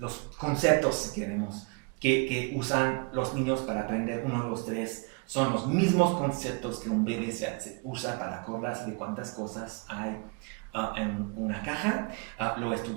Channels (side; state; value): left; quieter; 32.4 dB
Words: conceptos, si queremos, que usan los niños para aprender 1, 2, 3, son los mismos conceptos que un bebé se usa para acordarse de cuántas cosas hay en una caja. Lo